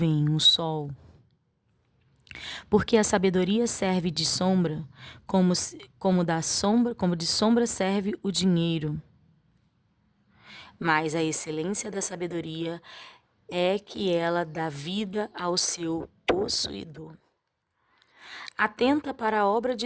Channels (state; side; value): identical; both; correlation 1.00